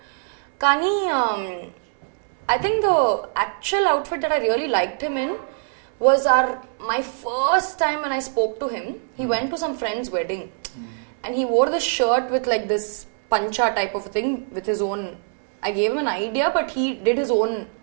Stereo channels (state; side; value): silent; left; 63 dB below the other